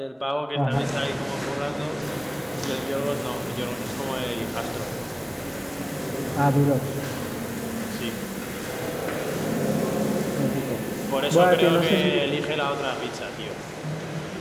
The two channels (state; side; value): identical; both; correlation 1.00